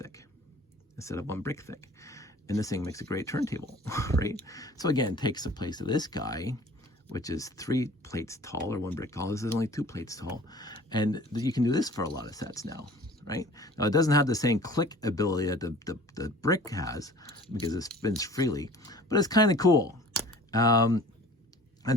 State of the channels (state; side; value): normal; both; correlation 0.46